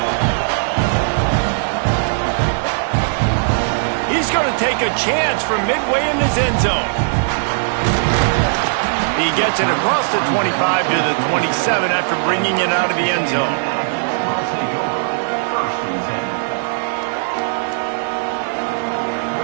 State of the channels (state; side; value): silent; left; digital silence